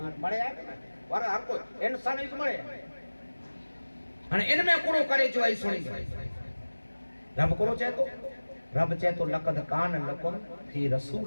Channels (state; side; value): inverted; both; correlation -1.00